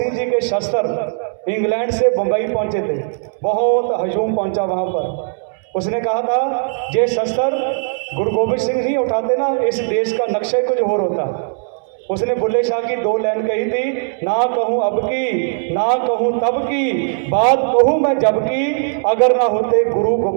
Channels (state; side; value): silent; left; 67 dB below the other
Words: जी के शस्त्र इंग्लैंड से बम्बई पहुंचे थे, बहुत हजूम पहुंचा वहां पर, उसने कहा था ये शस्त्र गुरु गोबिंद सिंह नहीं उठाते ना, इस देश का नक्शा कुछ और होता। उसने बुल्ले शाह की 2 लाइन कही थी, ना कहूँ अब की ना कहूँ तब की, बात कहूँ मैं जब की, अगर ना होते गुरु